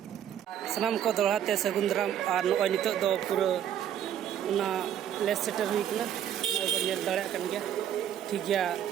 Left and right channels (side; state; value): left; quieter; 10.2 dB